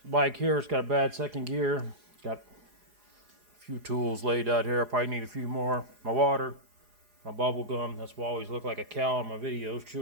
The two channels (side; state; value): left; late; 4.8 ms